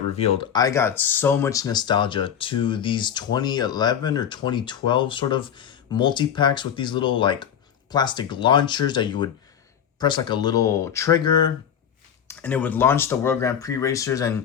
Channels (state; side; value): quieter; right; 8.7 dB